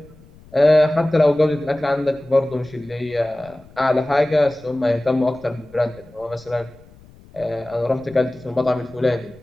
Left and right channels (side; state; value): left; noise; rumble, 24 dB below the sound